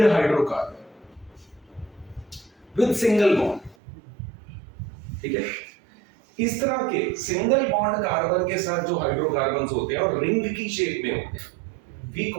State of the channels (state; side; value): drops out; left; at 3.8 s